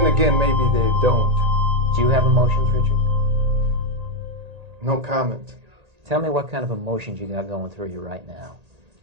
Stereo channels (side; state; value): left; late; 1.8 ms